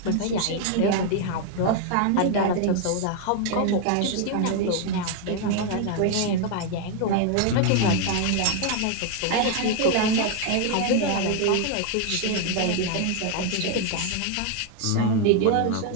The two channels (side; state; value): both; different; correlation 0.00